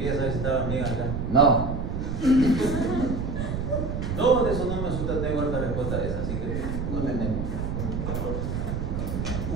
saber si estaba bien acá. No. No, de eso no me asusta, tengo harta respuesta de esa, así que no tenemos.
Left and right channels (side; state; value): right; noise; rumble, 3 dB below the sound